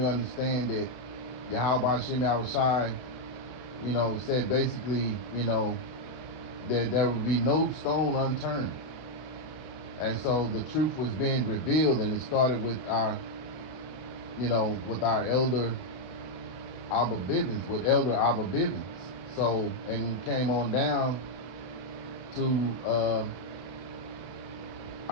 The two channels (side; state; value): right; late; 32 ms